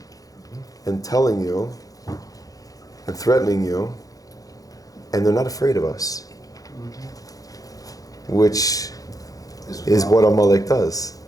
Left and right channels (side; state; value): right; late; 0.17 ms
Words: and telling you and threatening you, and they're not afraid of us, which is what Amalek does.